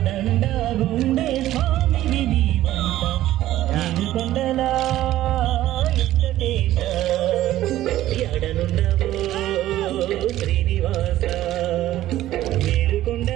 గుండె స్వామిని నీవంట ఏడుకొండలా వెంకటేశ ఎడనుండవో శ్రీనివాస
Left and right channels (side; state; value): left; quieter; 14.2 dB